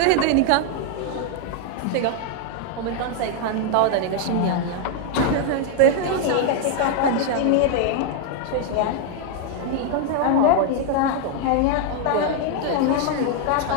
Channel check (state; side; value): different; both; correlation 0.00